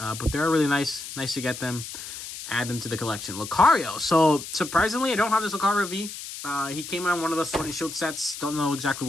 they're really nice to get them, add them to the collection. Lucario. So surprisingly, I don't have this Lucario V. He came on one of the Sword and Shield sets. Don't know exactly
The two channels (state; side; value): noise; left; hiss, 10 dB below the sound